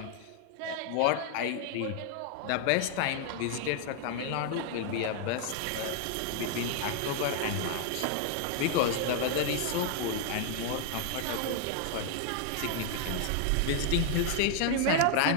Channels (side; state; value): both; different; correlation 0.00